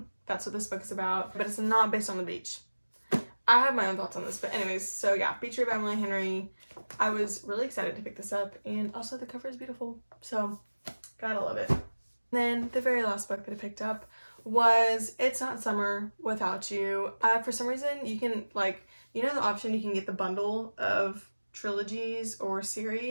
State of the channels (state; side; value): inverted; both; correlation -1.00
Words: that's what this book is about, but it's not based on the beach. I have my own thoughts on this, but anyways, so yeah, Beach Read by Emily Henry. I was really excited to pick this up, and also the cover is beautiful, so gotta love it. Then the very last book that I picked up was It's Not Summer Without You. For some reason, you can, like, you know the option you can get the bundle of trilogies or